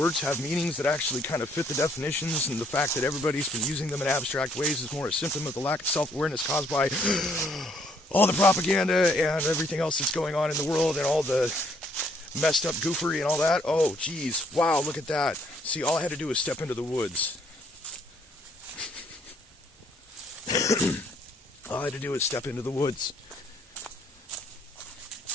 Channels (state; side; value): normal; both; correlation 0.67